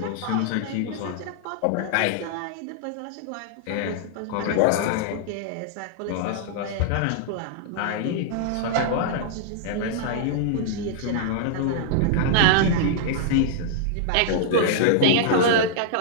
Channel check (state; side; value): different; both; correlation -0.01